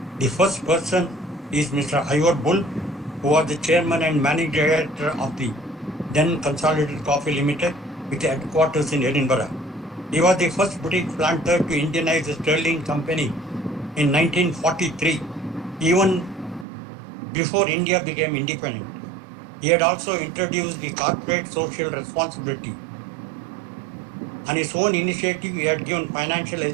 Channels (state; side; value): drops out; left; at 16.7 s